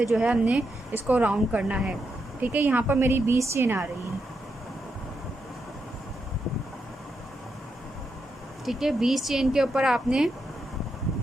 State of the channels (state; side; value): normal; both; correlation 0.83